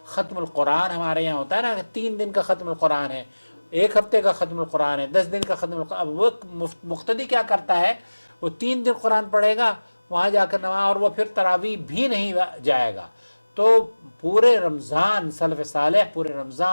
ختم القرآن ہمارے یہاں ہوتا ہے نا، 3 دن کا ختم القرآن ہے، 1 ہفتے کا ختم القرآن ہے، 10 دن کا ختم القرآن. اب وہ مقتدی کیا کرتا ہے، وہ 3 دن قرآن پڑھے گا، وہاں جا کر نماز، اور وہ پھر تراویح بھی نہیں جائے گا. تو پورے رمضان سلف صالح پورے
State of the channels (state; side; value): inverted; both; correlation -1.00